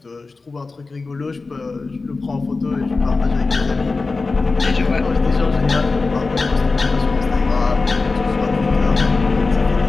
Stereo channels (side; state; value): right; quieter; 3.9 dB